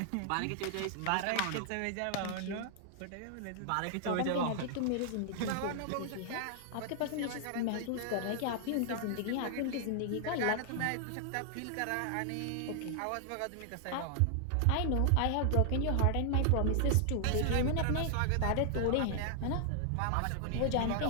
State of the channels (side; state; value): both; different; correlation -0.01